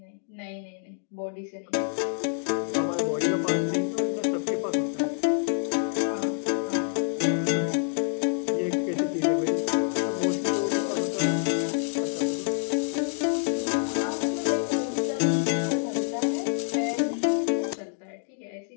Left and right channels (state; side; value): silent; right; digital silence